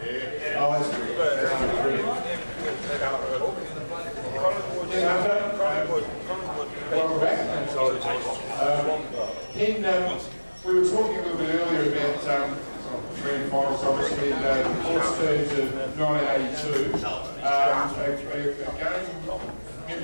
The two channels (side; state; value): both; inverted; correlation -1.00